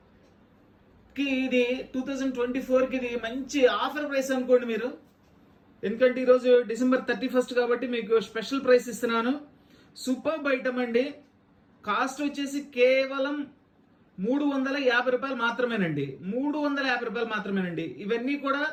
ఇది 2024కి ఇది మంచి ఆఫర్ ప్రైస్ అనుకోండి మీరు. ఎందుకంటే ఈరోజు డిసెంబర్ 31 కాబట్టి మీకు స్పెషల్ ప్రైస్ ఇస్తున్నాను. సూపర్ ఐటమ్ అండి. కాస్ట్ వచ్చేసి కేవలం 350 రూపాయలు మాత్రమేనండి. 350 రూపాయలు మాత్రమేనండి. ఇవన్నీ కూడా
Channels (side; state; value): both; identical; correlation 1.00